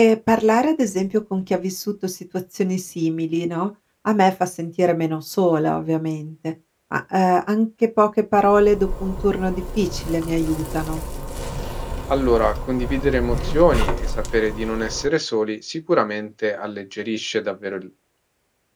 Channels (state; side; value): identical; both; correlation 1.00